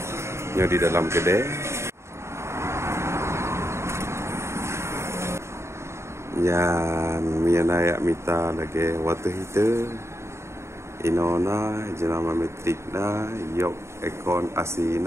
Ini di dalam kedai. Yan miana yak mita lagi water heater. Inona jenama Matrix na, York Econ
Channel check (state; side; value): late; left; 0.13 ms